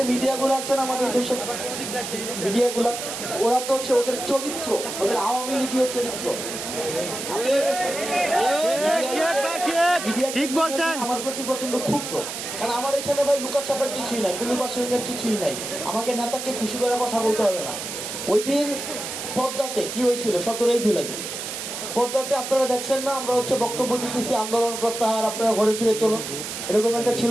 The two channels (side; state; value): right; noise; hiss, 6 dB below the sound